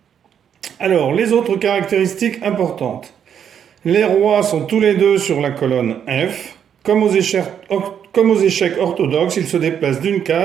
Alors, les autres caractéristiques importantes. Les rois sont tous les deux sur la colonne F. Comme aux échecs orthodoxes, ils se déplacent d'une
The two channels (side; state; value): left; quieter; 8.5 dB